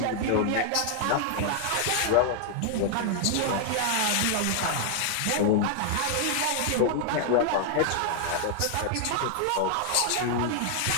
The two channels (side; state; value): both; different; correlation 0.00